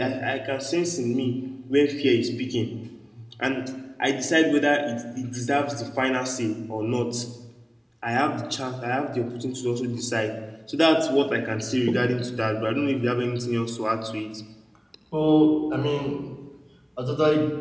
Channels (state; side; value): identical; both; correlation 1.00